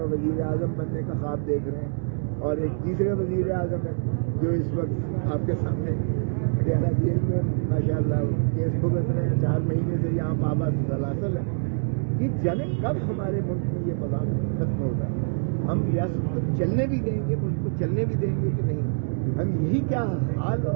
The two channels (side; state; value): left; silent; digital silence